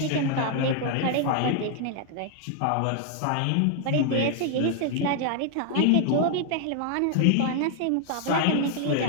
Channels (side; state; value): both; different; correlation 0.00